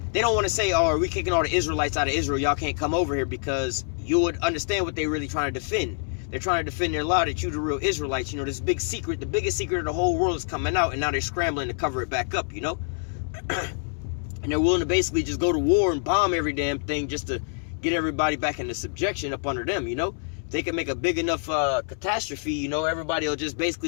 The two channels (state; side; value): silent; right; 58 dB below the other